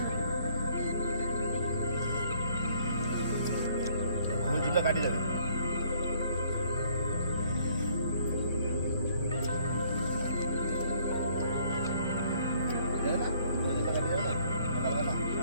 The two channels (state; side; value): inverted; both; correlation -0.63